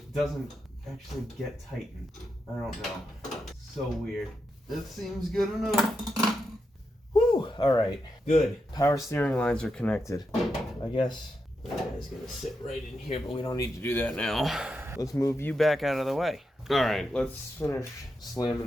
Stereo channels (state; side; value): normal; both; correlation 0.86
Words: doesn't actually get tightened. I don't know. So weird. That seems good enough. Whew! Alright, good. Power steering lines are connected. I guess that guy's gonna sit right in here, but we don't need to do that now. Let's move you back out of the way. Alright, let's finish